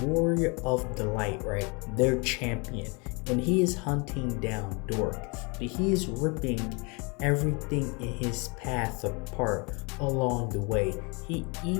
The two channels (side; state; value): right; quieter; 30.8 dB